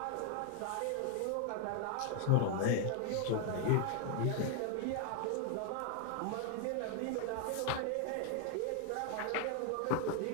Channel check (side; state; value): both; different; correlation 0.00